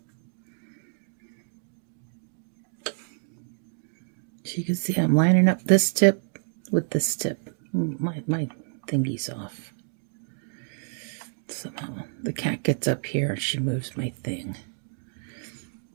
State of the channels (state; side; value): silent; left; digital silence